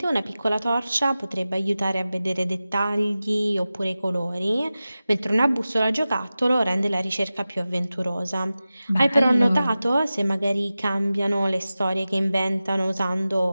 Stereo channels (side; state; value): both; inverted; correlation -0.95